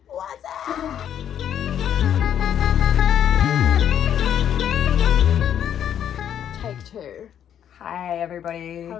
What's up? Take two. Hi, everybody.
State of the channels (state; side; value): quieter; right; 9.6 dB